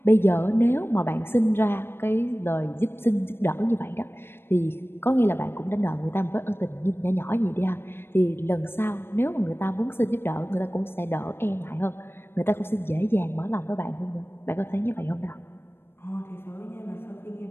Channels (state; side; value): late; right; 0.11 ms